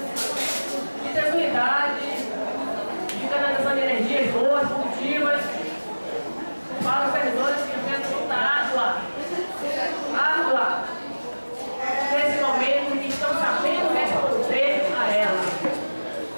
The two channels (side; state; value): both; inverted; correlation -1.00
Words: tranquilidade, de canalização de energias boas, positivas, para os servidores que enfrentam muita árdua, nesse momento, que estão sabendo responder a ela.